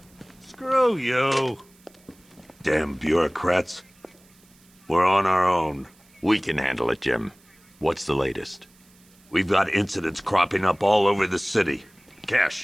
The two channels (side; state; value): right; noise; hiss, 30 dB below the sound